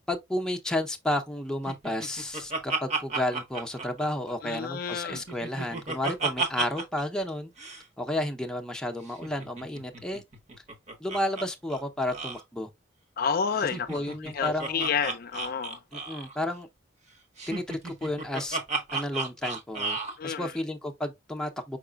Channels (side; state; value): both; normal; correlation 0.40